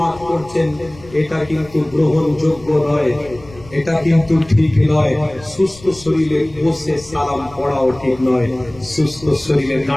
পড়ছেন, এটা কিন্তু গ্রহণযোগ্য নয়, এটা কিন্তু ঠিক নয়। সুস্থ শরীরে বসে সালাম পড়াও ঠিক নয়। সুস্থ শরীরে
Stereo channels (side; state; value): left; noise; rumble, 21 dB below the sound